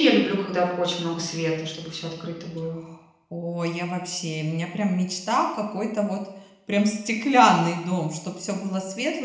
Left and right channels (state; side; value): identical; both; correlation 1.00